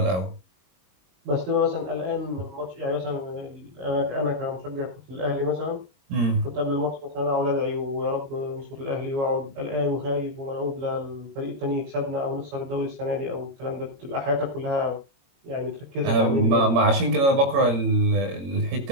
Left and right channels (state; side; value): late; left; 22 ms